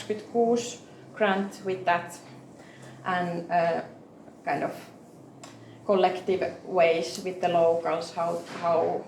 grant with that, and kind of collective ways with the locals,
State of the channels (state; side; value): identical; both; correlation 1.00